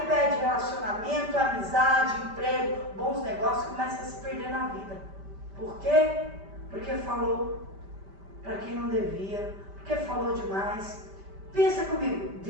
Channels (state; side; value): late; left; 5.1 ms